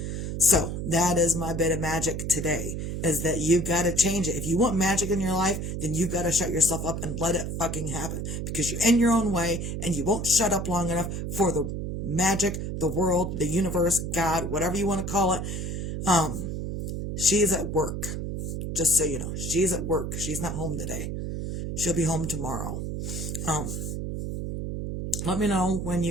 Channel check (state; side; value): noise; right; hum, 4 dB below the sound